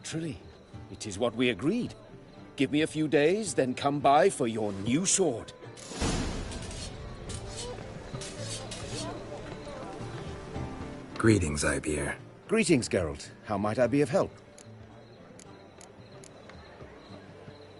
It is what we agreed. Give me a few days, then come by for your new sword. Greetings, Ivier. Greetings, Geralt. How might I be of help?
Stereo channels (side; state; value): both; identical; correlation 1.00